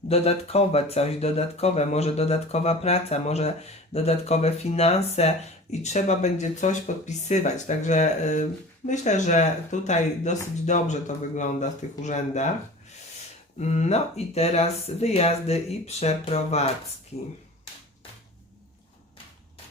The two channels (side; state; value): both; normal; correlation 0.39